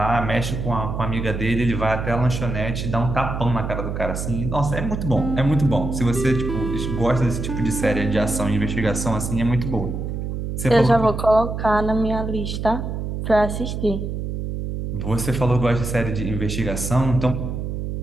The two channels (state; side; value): noise; right; hum, 4 dB below the sound